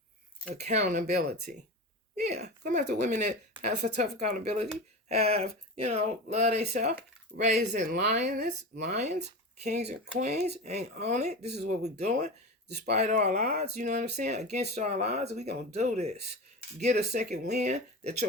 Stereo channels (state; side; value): normal; both; correlation 0.26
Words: Accountability. Yeah, come after women that have for tough accountability, have, love themselves, raising lions, kings and queens, ain't on it. This is what we're doing. Despite all odds, you know what I'm saying? Against all odds, we gonna do this. Get a second wind that